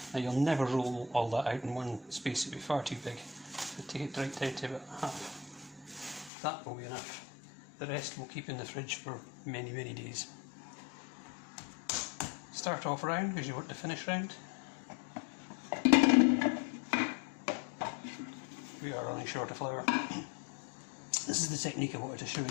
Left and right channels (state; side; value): drops out; right; at 6.3 s